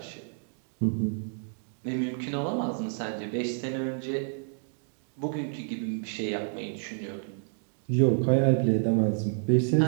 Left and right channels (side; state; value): left; silent; digital silence